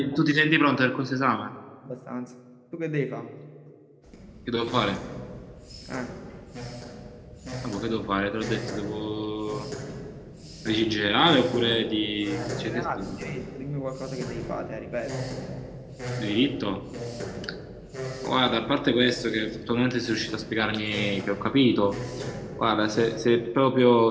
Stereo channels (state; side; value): identical; both; correlation 1.00